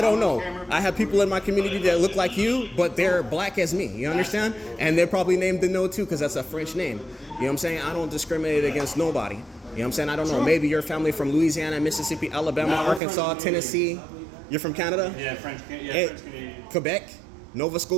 don't on know. camera. I have people in my community that look like you, but they're black as me. You understand? And they're probably named Deneau too because that's a French name. You know what I'm saying? I don't discriminate against nobody. You know what I'm saying? I don't know. Maybe your family from Louisiana, Mississippi, Alabama, No, we're Arkansas, from- Tennessee. You're from Canada? Yeah, French Hey, Canadian. Quebec, Nova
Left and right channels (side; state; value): left; drops out; at 13.0 s